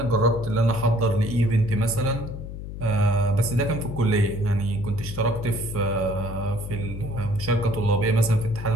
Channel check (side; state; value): left; noise; hum, 9 dB below the sound